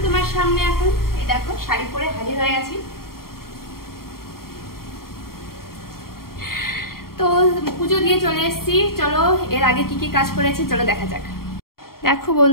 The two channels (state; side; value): late; right; 0.93 ms